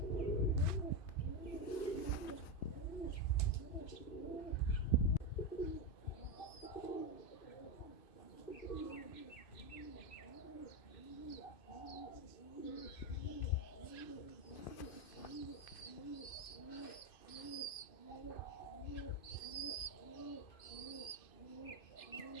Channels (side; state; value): right; late; 2.5 ms